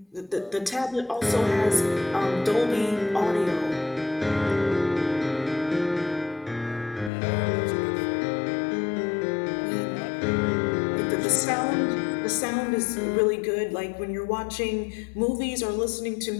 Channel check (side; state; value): right; drops out; at 7.1 s